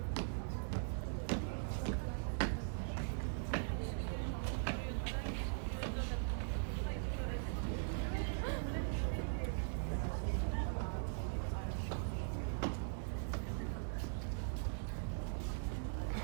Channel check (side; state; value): left; silent; digital silence